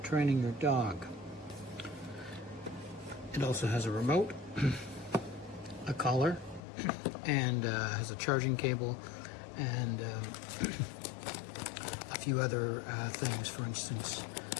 your dog. It also has a remote, a collar, and has a charging cable, and a few other things. For instance,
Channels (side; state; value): right; drops out; at 6.6 s